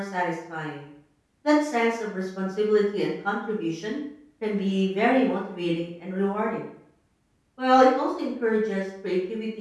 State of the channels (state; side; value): identical; both; correlation 1.00